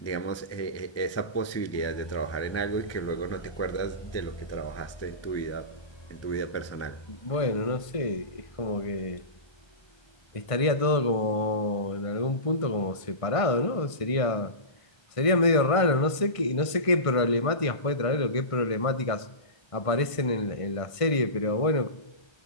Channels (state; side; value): late; right; 1.5 ms